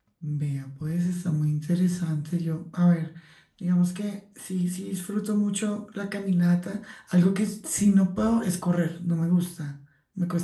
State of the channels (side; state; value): both; identical; correlation 1.00